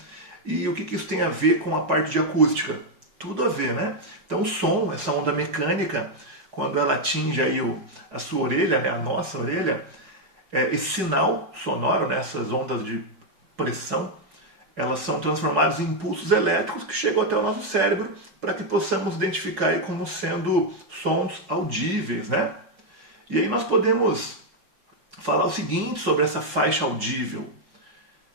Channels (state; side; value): late; left; 5.4 ms